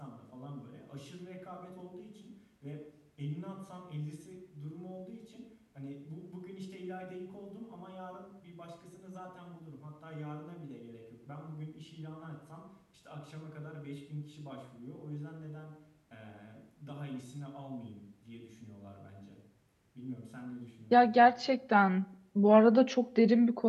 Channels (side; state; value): both; identical; correlation 1.00